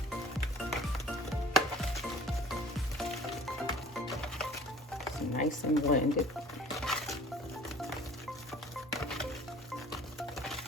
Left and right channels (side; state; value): both; normal; correlation 0.49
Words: nice and blended.